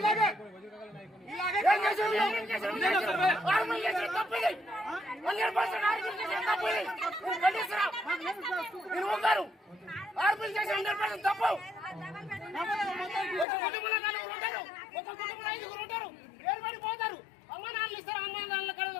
తప్పు. ఒక కుటుంబంలో 4 ఉంటారు, ఒక కుటుంబంలో 5 ఉంటారు. ఏర్పడిపోతారు. అమ్మ నాన్నలు ఇస్తారు, అమ్మ నాన్నల కడ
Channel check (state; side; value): drops out; right; at 13.5 s